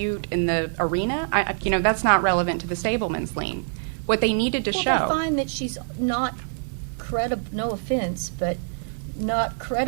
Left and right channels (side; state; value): left; silent; digital silence